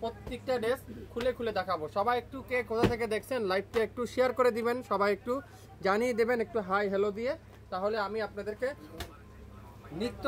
প্রত্যেকটা ড্রেস খুলে খুলে দেখাবো। সবাই একটু কে কোথা থেকে দেখছেন লাইভটা একটু শেয়ার করে দিবেন, সবাই একটু জানিয়ে দেবেন একটু হাই হ্যালো দিয়ে, তাহলে আমি আপনাদেরকে নিত্য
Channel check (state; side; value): identical; both; correlation 1.00